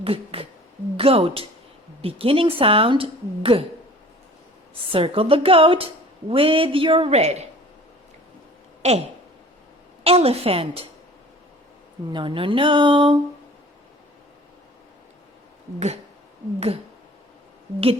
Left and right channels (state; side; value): normal; both; correlation 0.46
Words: G, G. Goat. Beginning sound G. Circle the goat with your red. Elephant. No, no, no. G, G.